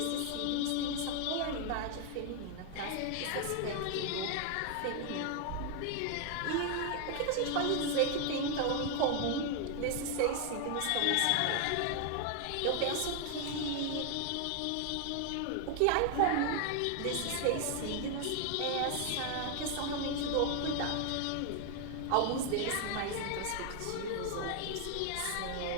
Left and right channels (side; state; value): both; different; correlation 0.00